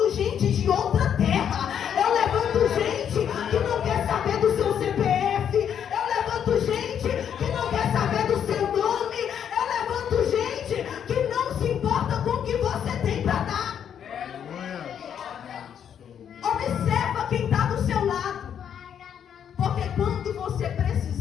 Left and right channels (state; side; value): quieter; right; 8.7 dB